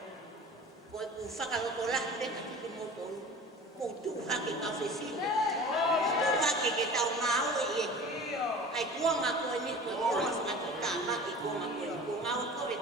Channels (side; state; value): both; normal; correlation 0.39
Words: Ko e ku whakaroto la pe ka ki motonu. Ko tu hake ka whewhine. Tu hake ke tau ngau e e. Ai kuanga ko e ni ko e kuanga whakatuta maki kuanga ko e ni. Ko ngau ko e